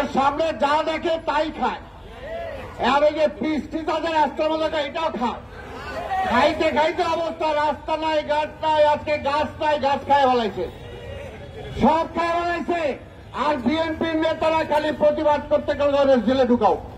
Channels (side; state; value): both; identical; correlation 1.00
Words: সামনে যা দেখে তাই খায়। আর ওই যে পিস্টি তাদের রাস্তার মধ্যে এটাও খায়। খাইতে খাইতে অবস্থা, রাস্তা নাই, গাছ নাই, আজকে গাছ নাই, গাছ খায় ফেলাইছে, সব খায় ফেলাইছে। আর বিএনপির নেতারা খালি প্রতিবাদ করতে গেলে জেলে ঢুকাও,